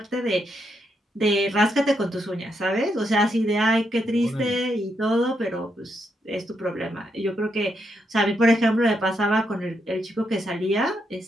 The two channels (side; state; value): both; normal; correlation 0.80